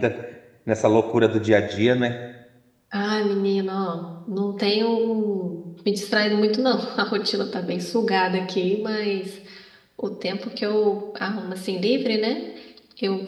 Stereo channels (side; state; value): both; identical; correlation 1.00